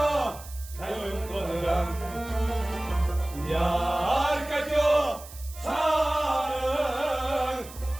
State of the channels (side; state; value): right; noise; hiss, 17 dB below the sound